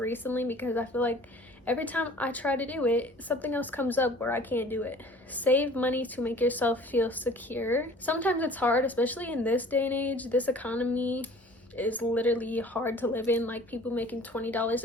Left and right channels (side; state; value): both; normal; correlation 0.48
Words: because I feel like every time I try to do it, something else comes up where I can't do it. Save money to make yourself feel secure. Sometimes it's hard, especially in this day and age. This economy is literally hard to live in. Like, people making $20